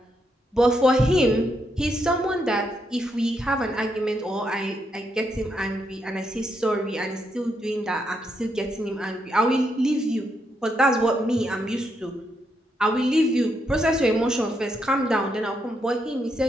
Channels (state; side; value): normal; both; correlation 0.79